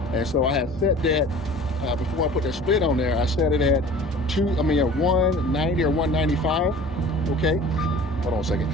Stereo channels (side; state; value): both; normal; correlation 0.44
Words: and so I had set that before I put that split on there. I set it at 190 or 195. Okay, hold on a second.